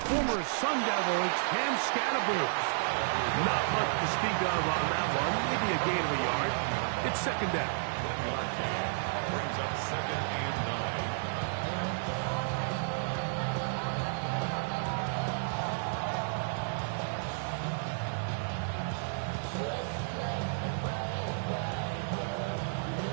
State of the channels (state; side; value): silent; left; digital silence